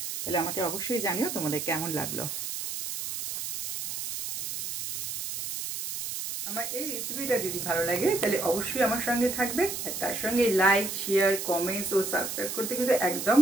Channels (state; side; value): noise; right; hiss, 5 dB below the sound